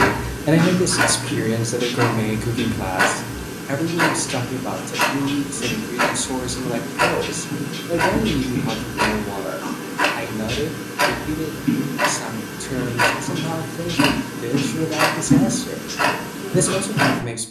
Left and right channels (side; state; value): both; identical; correlation 1.00